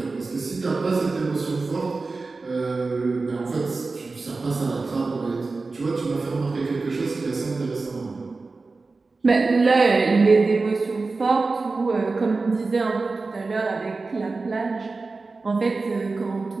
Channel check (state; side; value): quieter; left; 3.8 dB